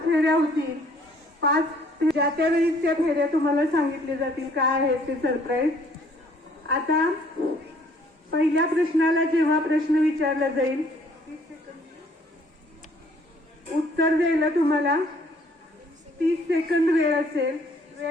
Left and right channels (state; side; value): normal; both; correlation 0.60